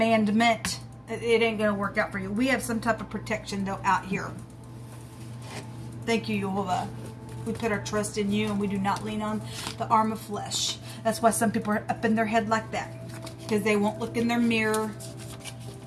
it ain't gonna work out for you. We have some type of protection though out here. Thank you, Yehovah. We put our trust in you, and we do not lean on the arm of flesh. That's why some people are up in their head like that, because they won't look in their mirror.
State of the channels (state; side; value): identical; both; correlation 1.00